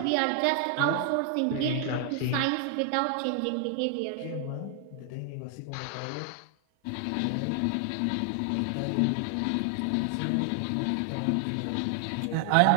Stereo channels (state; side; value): different; both; correlation 0.00